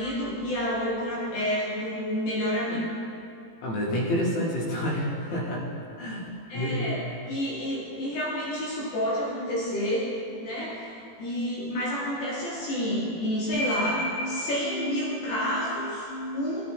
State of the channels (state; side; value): late; right; 18 ms